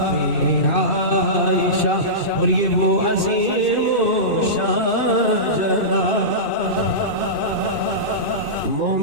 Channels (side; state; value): right; late; 2.6 ms